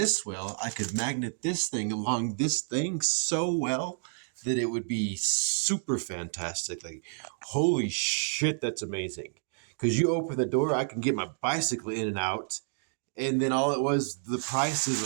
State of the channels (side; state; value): left; silent; digital silence